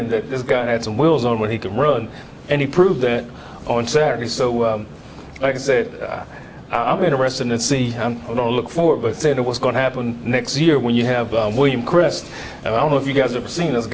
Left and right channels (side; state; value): both; identical; correlation 1.00